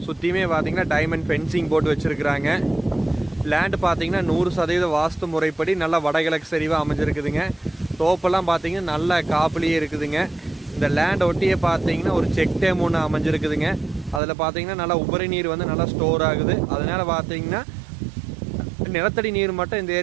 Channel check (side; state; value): left; drops out; at 14.2 s